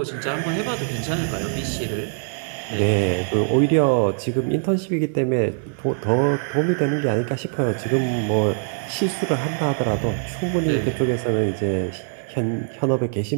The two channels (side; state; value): left; silent; digital silence